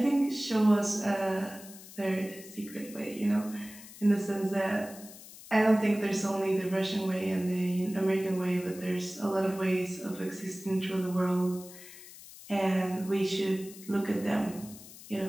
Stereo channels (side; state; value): left; noise; hiss, 17 dB below the sound